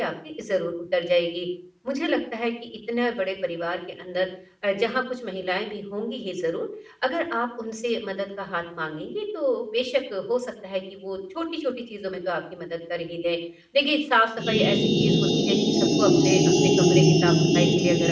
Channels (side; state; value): both; identical; correlation 1.00